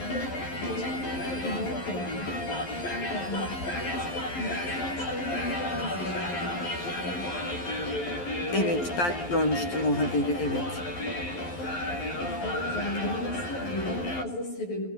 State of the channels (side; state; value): right; late; 11 ms